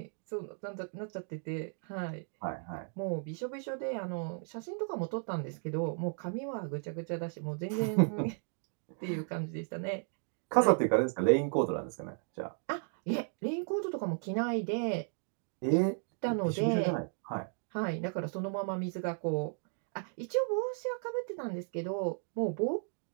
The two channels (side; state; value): left; silent; 54 dB below the other